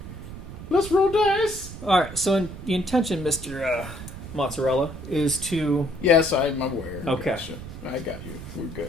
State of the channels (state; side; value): noise; right; rumble, 11 dB below the sound